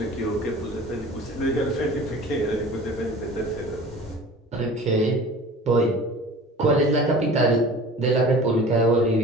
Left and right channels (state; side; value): normal; both; correlation 0.42